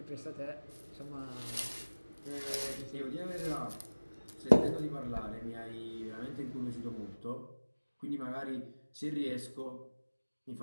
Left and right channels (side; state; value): both; inverted; correlation -1.00